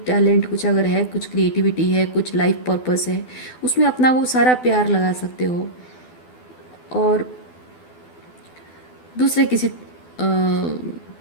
टैलेंट कुछ अगर है, कुछ क्रिएटिविटी है, कुछ लाइफ पर्पस है, उसमें अपना वो सारा प्यार लगा सकते हो और दूसरे किसी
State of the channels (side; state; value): right; late; 12 ms